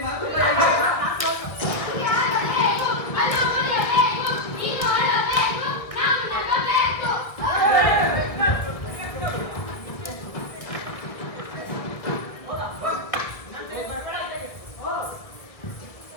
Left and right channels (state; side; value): late; right; 1.6 ms